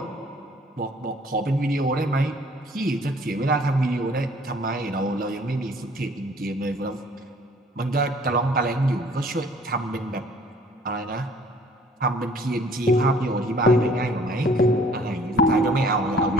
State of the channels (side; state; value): both; normal; correlation 0.56